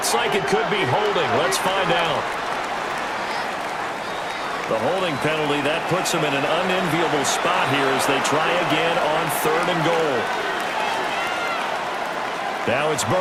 like it could be holding. Let's find out. The holding penalty, that puts them in an unenviable spot here as they try again on 3rd and goal. Now it's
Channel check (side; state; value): both; identical; correlation 1.00